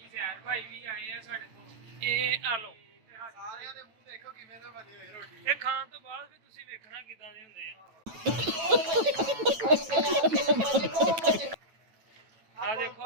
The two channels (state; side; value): late; left; 9.1 ms